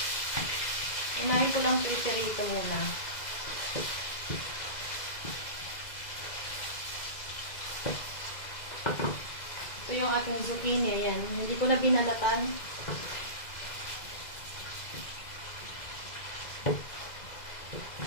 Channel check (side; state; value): right; late; 2.0 ms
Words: Unahin ko lang piprito muna. Ito Ito yung ating zucchini. Ayan. Hindi ko na binalatan.